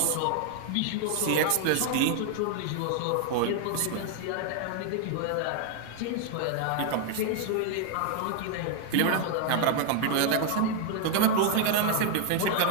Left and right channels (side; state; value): both; different; correlation 0.00